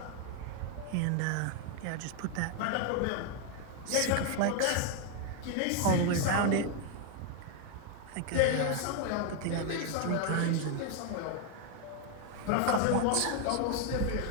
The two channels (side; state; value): both; different; correlation 0.01